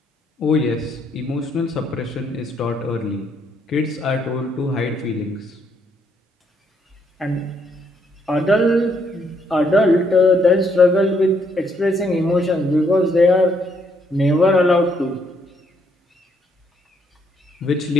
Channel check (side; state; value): both; normal; correlation 0.72